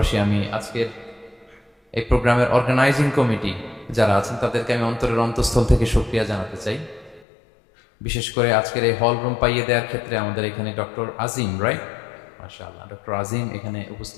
আমি আজকের এই প্রোগ্রামের অর্গানাইজিং কমিটি যারা আছেন তাদেরকে আমি অন্তরের অন্তঃস্থল থেকে শুকরিয়া জানাতে চাই। বিশেষ করে আজকের এই হল রুম পাইয়ে দেওয়ার ক্ষেত্রে আমাদের এখানে ডক্টর আজিম, রাইট, মাশাআল্লাহ, ডক্টর আজিম এখানে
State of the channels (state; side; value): drops out; right; at 7.2 s